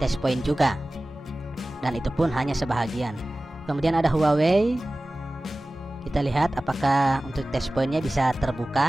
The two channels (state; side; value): normal; both; correlation 0.97